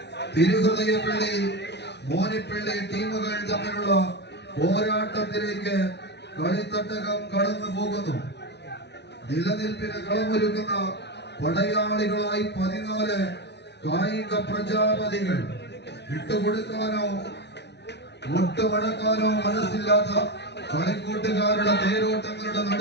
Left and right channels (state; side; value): late; right; 0.50 ms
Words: തിരുഹൃദയപ്പള്ളി മോനിപ്പള്ളി ടീമുകൾ തമ്മിലുള്ള പോരാട്ടത്തിലേക്ക് കളിത്തട്ടകം കടന്നു പോകുന്നു. നിലനിൽപ്പിന് കളമൊരുക്കുന്ന പടയാളികളായി 14 കായിക പ്രജാപതികൾ. വിട്ടുകൊടുക്കാനോ മുട്ടുമടക്കാനോ മനസ്സില്ലാത്ത കളിക്കൂട്ടുകാരുടെ തേരോട്ടങ്ങളുടെ